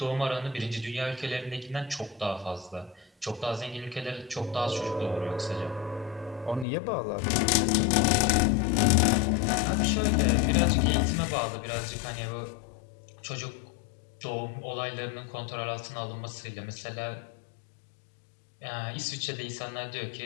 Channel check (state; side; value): drops out; right; at 6.7 s